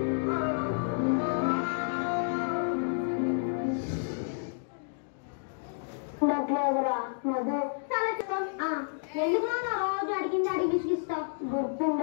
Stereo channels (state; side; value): silent; right; digital silence